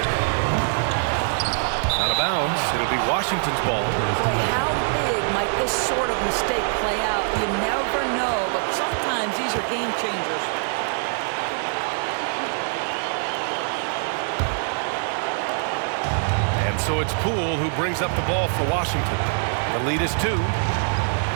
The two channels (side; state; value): left; silent; digital silence